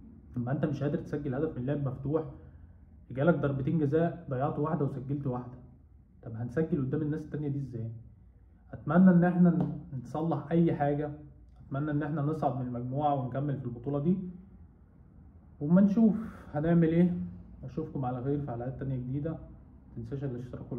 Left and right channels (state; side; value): identical; both; correlation 1.00